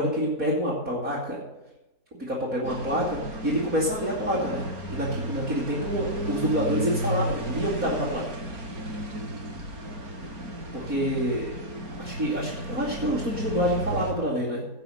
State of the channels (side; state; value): left; late; 4.2 ms